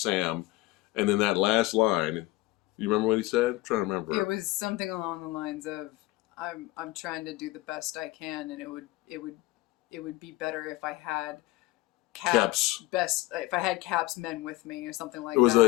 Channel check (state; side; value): quieter; right; 18.8 dB